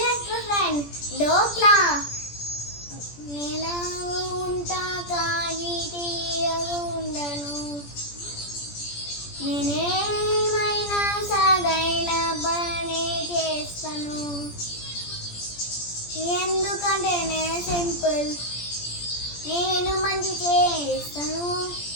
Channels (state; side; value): late; right; 17 ms